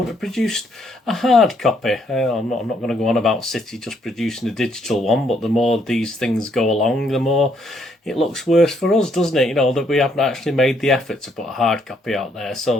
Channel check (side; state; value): both; normal; correlation 0.71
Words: have produced a hard copy. I'm not going to go on about City just producing a digital one, but the more these things go along, the more it looks worse for us, doesn't it? You know, that we haven't actually made the effort to put a hard copy out there.